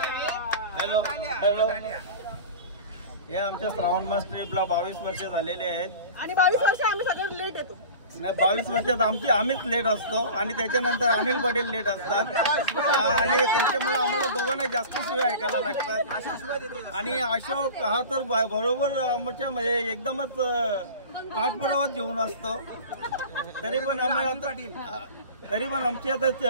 हॅलो. हे आमच्या श्रावण मास ट्रिपला 22 वर्ष झालेले आहेत आणि 22 वर्ष आम्ही सगळं लेट येतो. नाही, 22 वर्षात आम्हीच लेट असतो आणि त्याच्यानंतर अनिल पाटील लेट असतात आणि त्याच्यामुळे आम्हाला दोघांना जास्त शिवाय ऐकायला लागतात. आणि अशोक हा तर बरोबर आमच्या म्हणजे एकदमच पाठपुरावात घेऊन असतो. तरी पण आमची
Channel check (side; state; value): both; inverted; correlation -0.37